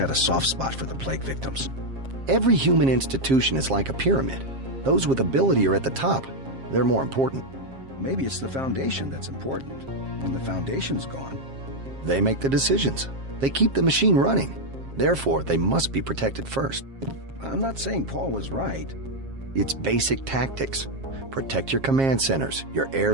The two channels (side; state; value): left; late; 7.5 ms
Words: a soft spot for the plague victims. Every human institution is like a pyramid. Those with ability are at the top. They're more important. Maybe it's the foundation that's important. When the foundation's gone... They make the decisions. They keep the machine running. Therefore, they must be protected first. I'm not saying Paul was right. It's basic tactics. Protect your command centers, your